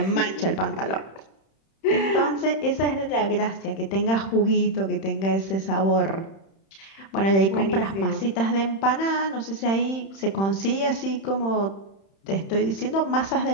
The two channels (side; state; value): right; late; 31 ms